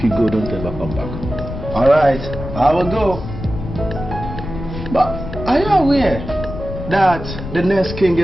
you go, don't ever come back. Alright, I will go. But are you aware that the next king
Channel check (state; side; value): noise; left; rumble, 8 dB below the sound